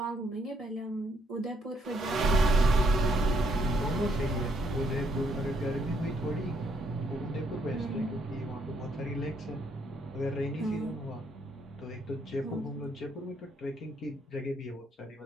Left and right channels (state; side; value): normal; both; correlation 0.71